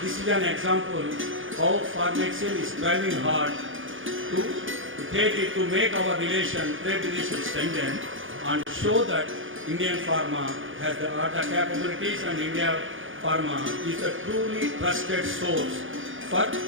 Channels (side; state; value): left; late; 0.58 ms